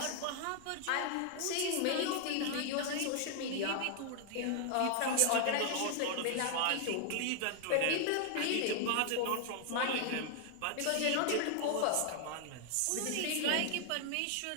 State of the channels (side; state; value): both; different; correlation 0.00